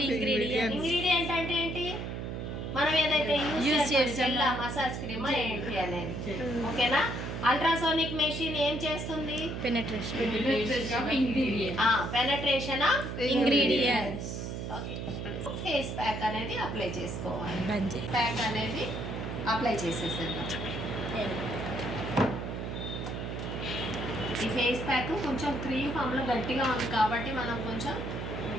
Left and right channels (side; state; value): right; noise; hum, 5 dB below the sound